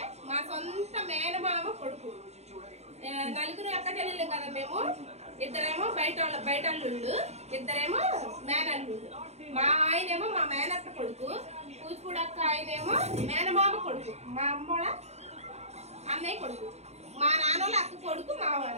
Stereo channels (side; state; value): left; late; 0.31 ms